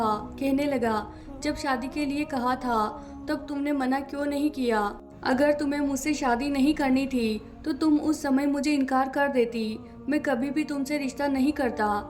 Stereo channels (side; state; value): both; identical; correlation 1.00